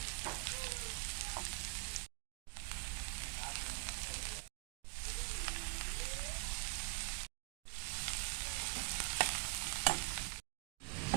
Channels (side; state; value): left; quieter; 32.3 dB